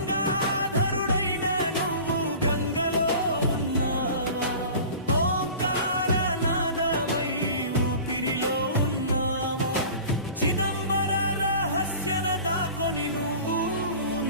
నువ్వు గంగలో ఉన్నావా ఓంకారనాదమై ఊపిరిలో ఉన్నావా చిదంబర రహస్యన దాకొని నువ్వు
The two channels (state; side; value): inverted; both; correlation -0.40